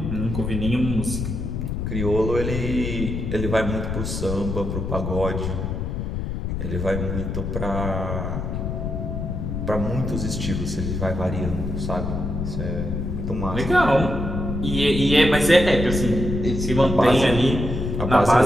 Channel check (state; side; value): noise; left; rumble, 3 dB below the sound